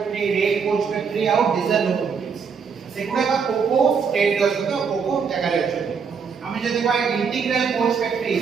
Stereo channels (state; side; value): quieter; left; 6.0 dB